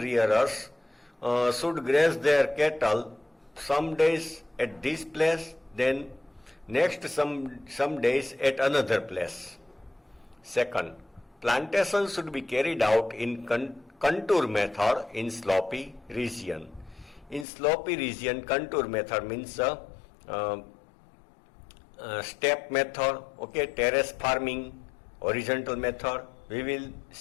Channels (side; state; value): right; drops out; at 17.4 s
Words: should graze their cattle some days at this place, then next some days at another place. Second, plantation should be carried out in contour method in slopy region. In slopy region, contour method means step method, okay, terrace farming, horizontal method. We will